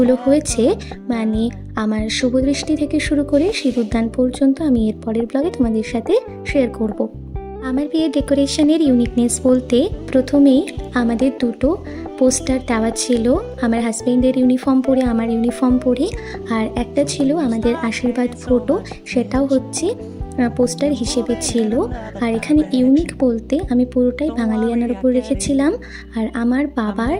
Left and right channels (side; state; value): both; identical; correlation 1.00